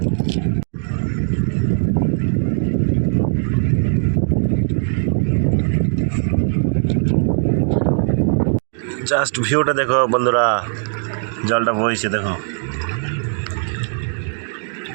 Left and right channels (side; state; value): left; silent; 66 dB below the other